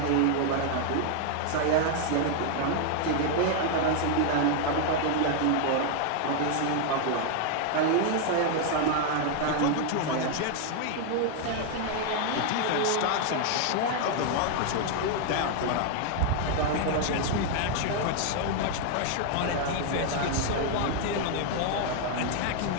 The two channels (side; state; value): both; different; correlation 0.00